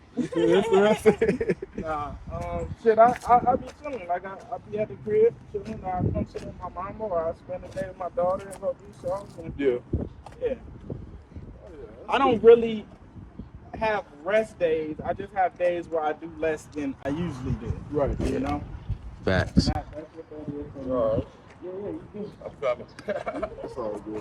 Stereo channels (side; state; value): both; identical; correlation 1.00